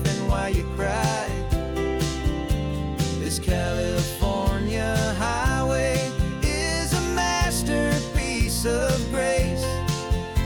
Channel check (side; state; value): both; identical; correlation 1.00